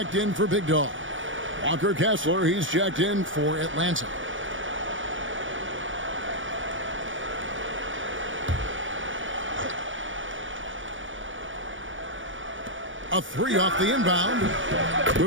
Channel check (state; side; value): late; left; 0.56 ms